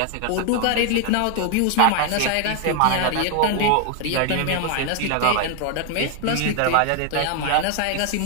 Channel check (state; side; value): different; both; correlation 0.00